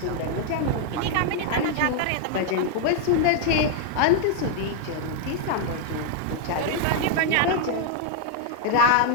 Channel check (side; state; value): both; different; correlation 0.00